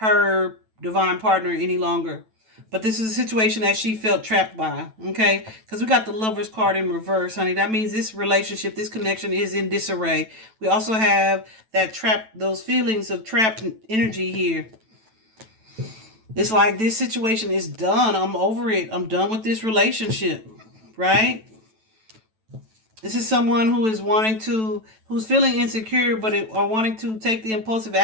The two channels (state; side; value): late; left; 9.1 ms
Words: divine partner any longer. But this is a situation that she felt trapped by, okay? Because we got the Lover's card in reverse, honey. That means this relationship, this connection is in disarray. We also have that trap, those feelings of trapped energy here. It's like this situation is done. I'm over it. I'm done with this relationship, right? This is someone who is who's feeling insecure, but are wanting to take the impulsive